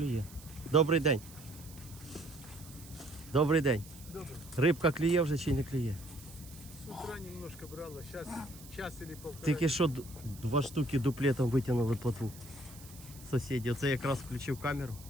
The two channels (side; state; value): right; noise; hiss, 19 dB below the sound